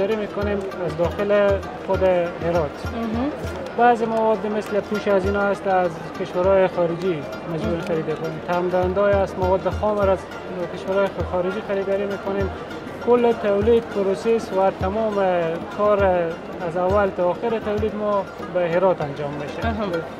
میکنیم از داخل خود هرات. بعضی مواد مثل پوش از اینا است از کشورهای خارجی مجبور خرید کنیم. تمام‌دهنده‌ای است مواد خام از کشورهای خارجی خریداری میکنیم. کل تولید پروسس و تمام کار از اول تا آخر تولید ما به هرات انجام میشه.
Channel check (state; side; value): identical; both; correlation 1.00